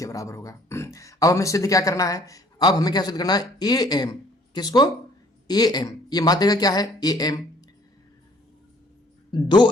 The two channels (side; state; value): both; normal; correlation 0.58